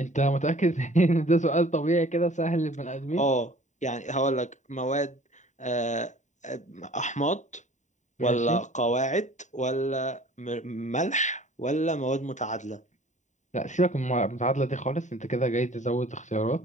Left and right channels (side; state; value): right; late; 0.35 ms